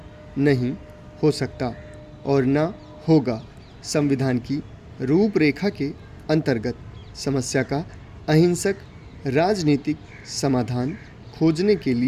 नहीं हो सकता और न होगा। संविधान की रूपरेखा के अंतर्गत समस्या का अहिंसक राजनीतिक समाधान खोजने के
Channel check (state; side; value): identical; both; correlation 1.00